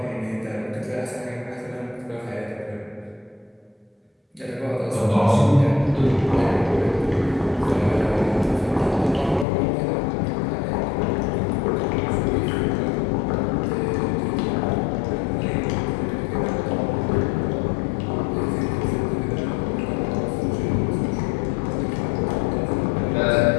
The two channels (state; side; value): drops out; right; at 9.5 s